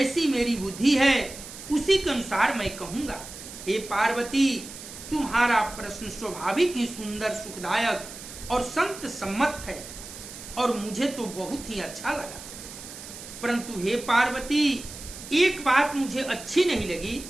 मेरी बुद्धि है, उसी के अनुसार मैं कहूंगा। हे पार्वती, तुम्हारा प्रश्न स्वाभाविक ही सुंदर, सुखदायक और संत सम्मत है और मुझे तो बहुत ही अच्छा लगा। परंतु हे पार्वती, एक बात मुझे अच्छी नहीं लगी।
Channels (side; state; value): right; noise; hiss, 13 dB below the sound